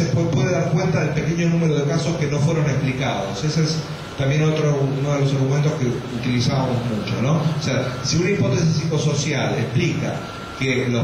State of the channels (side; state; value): both; identical; correlation 1.00